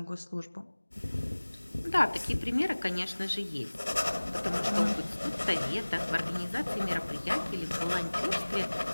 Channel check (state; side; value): inverted; both; correlation -1.00